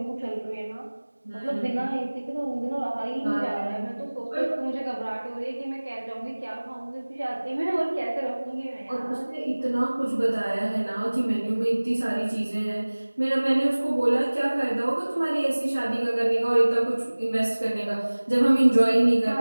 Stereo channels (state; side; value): inverted; both; correlation -1.00